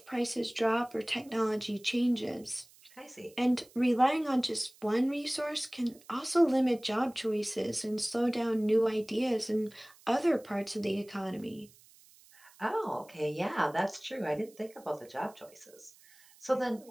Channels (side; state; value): right; noise; hiss, 26 dB below the sound